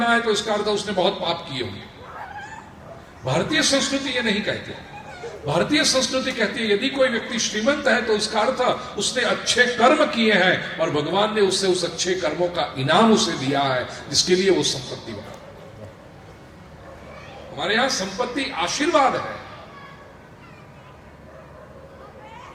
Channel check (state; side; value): identical; both; correlation 1.00